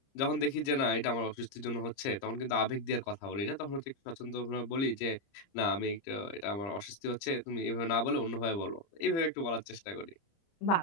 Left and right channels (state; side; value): late; right; 30 ms